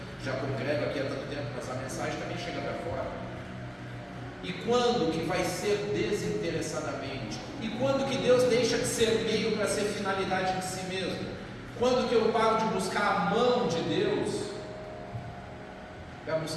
já congrego aqui há tanto tempo, mas a mensagem também chega para fora. E quando que vai ser desinteressadamente? E quando que Deus deixa de ser meio para ser finalidade de si mesmo? Quando que eu paro de buscar a mão de Deus para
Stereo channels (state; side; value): identical; both; correlation 1.00